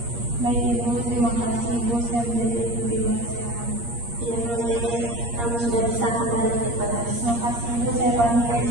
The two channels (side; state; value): left; late; 8.5 ms